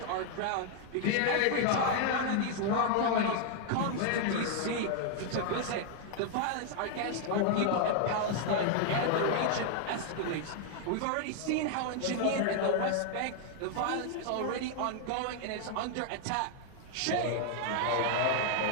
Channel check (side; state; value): both; different; correlation 0.00